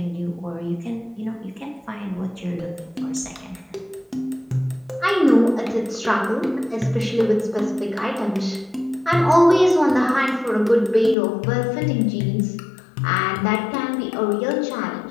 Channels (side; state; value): right; drops out; at 11.2 s